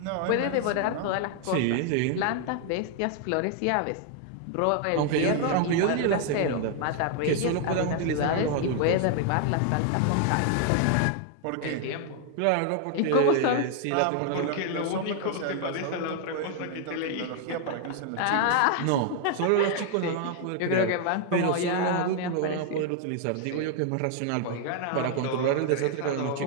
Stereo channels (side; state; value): both; different; correlation 0.00